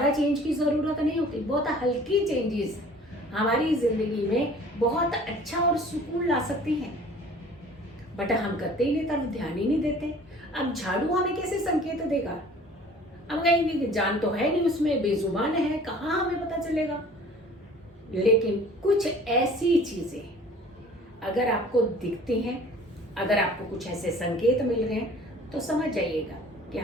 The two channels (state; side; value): normal; both; correlation 0.48